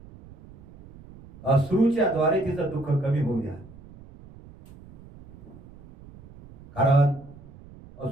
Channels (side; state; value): right; noise; rumble, 21 dB below the sound